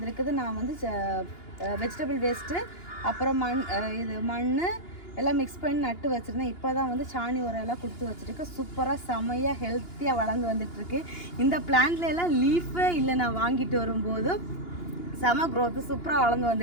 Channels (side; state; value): right; late; 2.9 ms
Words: நான் வந்து வெஜிடபிள் வேஸ்ட்டு, அப்புறம் மண் எல்லாம் மிக்ஸ் பண்ணி நட்டு வச்சுருந்தேன். இப்போ தான் வந்து சாணி உரம் எல்லாம் கொடுத்து வச்சுருக்கு. சூப்பராக செமையாக ஹெல்த்தியாக வளர்ந்து வந்துட்டுருக்கு. இந்த பிளான்ட்ல எல்லாம் லீஃபே இல்லை, நான் வாங்கிட்டு வரும்போது செம க்ரோத்து சூப்பராக வளர்ந்து